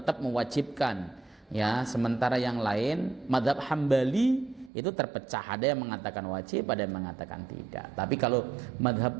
mewajibkan. Ya, sementara yang lain mazhab Hambali itu terpecah. Ada yang mengatakan wajib, ada yang mengatakan tidak. Tapi kalau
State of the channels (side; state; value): left; drops out; at 4.7 s